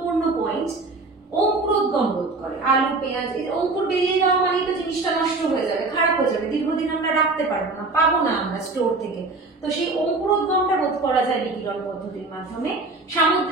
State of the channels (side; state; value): left; quieter; 3.5 dB